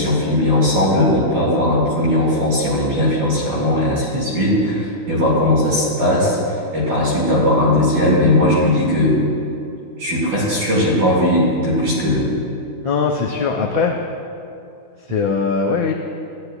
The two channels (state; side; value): late; left; 16 ms